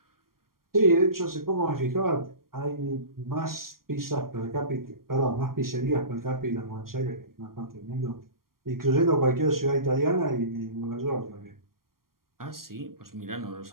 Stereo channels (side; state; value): left; late; 0.92 ms